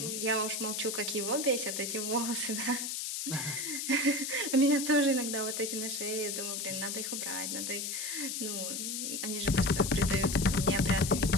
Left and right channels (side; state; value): left; noise; hiss, 3 dB below the sound